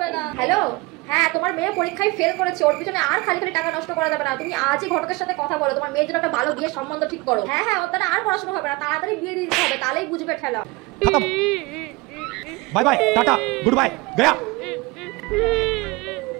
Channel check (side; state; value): left; quieter; 23.9 dB